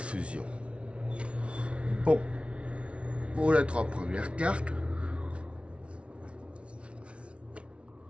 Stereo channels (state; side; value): late; left; 0.060 ms